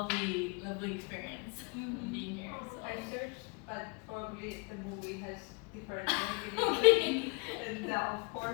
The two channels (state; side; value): quieter; right; 31.4 dB